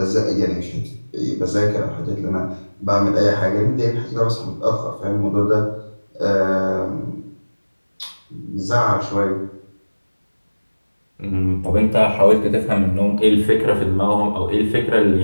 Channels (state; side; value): inverted; both; correlation -1.00